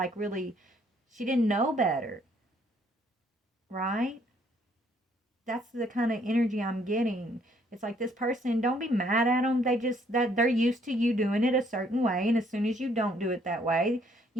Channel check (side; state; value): both; normal; correlation 0.66